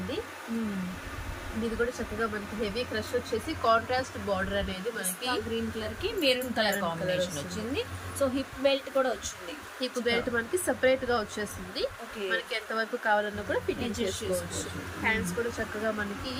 ఇది కూడా చక్కగా మనకి హెవీ క్రష్ వచ్చేసి కాంట్రాస్ట్ బార్డర్ అనేది మనకి గ్రీన్ కలర్ కి మెరూన్ కలర్ కాంబినేషన్ వచ్చింది. సో హిప్ బెల్ట్ కూడా వచ్చింది. హిప్ బెల్ట్ మనకి సెపరేట్ గా వచ్చేస్తుంది. మనకి ఎంత వరకు కావాలన్నా కూడా ఫిట్టింగ్ చేసుకోవచ్చు. హ్యాండ్స్ కూడా చక్కగా మనకి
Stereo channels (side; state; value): both; identical; correlation 1.00